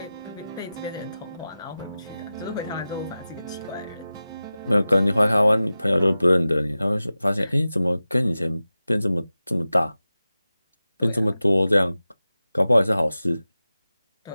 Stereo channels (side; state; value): both; inverted; correlation -0.95